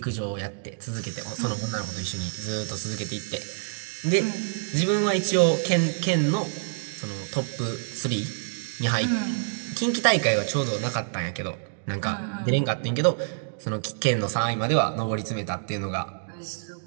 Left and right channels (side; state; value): left; silent; digital silence